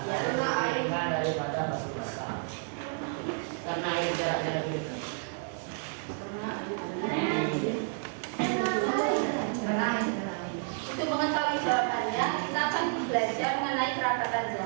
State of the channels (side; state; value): left; silent; 57 dB below the other